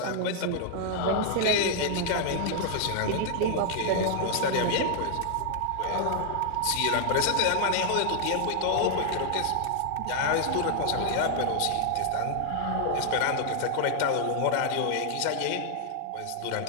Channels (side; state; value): both; different; correlation 0.00